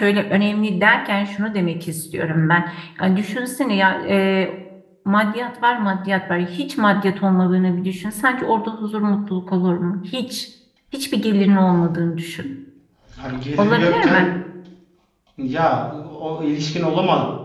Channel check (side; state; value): both; identical; correlation 1.00